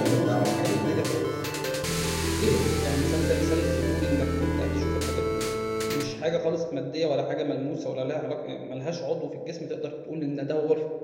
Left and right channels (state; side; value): identical; both; correlation 1.00